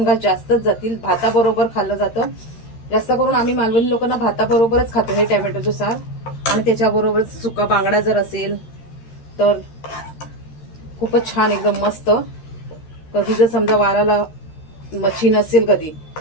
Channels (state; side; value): late; right; 13 ms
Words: घास जास्तच जातील भाताबरोबर खाल्लं जातं। जास्त करून आम्ही मालवणी लोकांना भाताबरोबरच खातो हे टोमॅटोचं सार आणि त्याच्याबरोबर सुका बांगडा जर असेल तर खूपच छान, एकदम मस्त. कधी जर समजा वाराला मच्छी नसेल कधी,